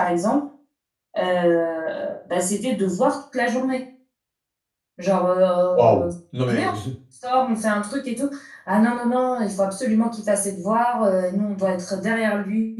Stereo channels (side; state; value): both; identical; correlation 1.00